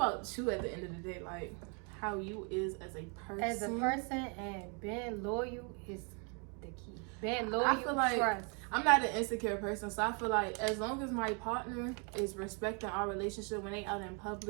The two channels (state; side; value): quieter; left; 36.6 dB